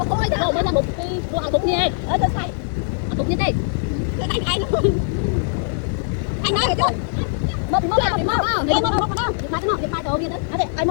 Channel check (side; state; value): right; silent; 58 dB below the other